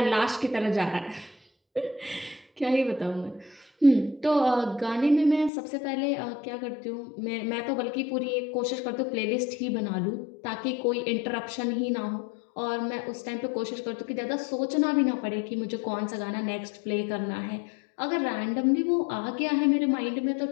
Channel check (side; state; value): right; drops out; at 5.5 s